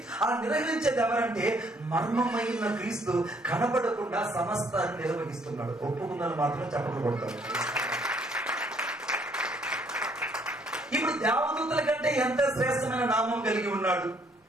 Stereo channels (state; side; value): normal; both; correlation 0.66